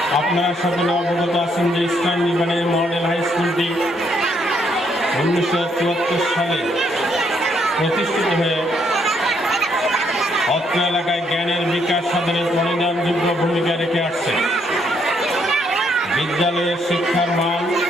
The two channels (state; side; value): normal; both; correlation 0.72